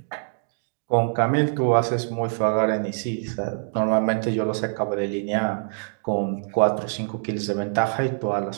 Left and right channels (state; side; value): silent; left; digital silence